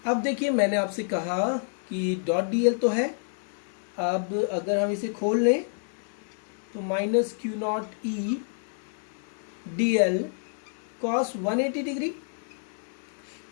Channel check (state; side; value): silent; right; digital silence